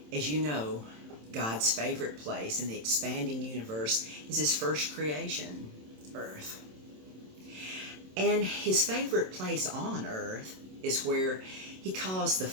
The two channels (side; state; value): left; late; 27 ms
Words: as you know, God's favorite place in the expanding universe is his first creation, Earth. And his favorite place on Earth is where he caused the